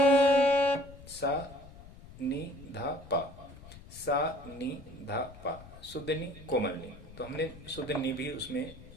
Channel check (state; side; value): noise; left; rumble, 18 dB below the sound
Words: सा नी धा पा, सा नी धा पा, शुद्ध नी कोमल नी। तो हमने शुद्ध नी भी उसमें